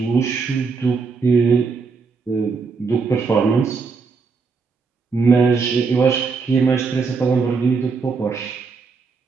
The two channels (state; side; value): quieter; left; 4.8 dB